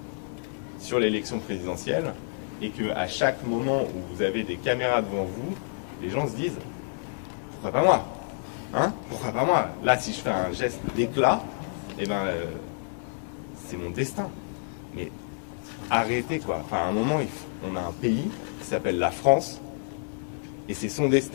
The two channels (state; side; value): silent; right; digital silence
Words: sur l'élection présidentielle et qu'à chaque moment où vous avez des caméras devant vous, les gens se disent « Pourquoi pas moi hein? Pourquoi pas moi ?» Là, si je fais un geste d'éclat, eh ben, c'est mon destin. Mais arrêtez, quoi. Enfin, à un moment, on a un pays qui s'appelle la France, et c'est son